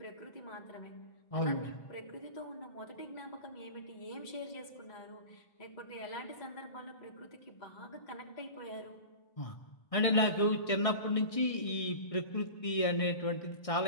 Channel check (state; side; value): late; right; 1.6 ms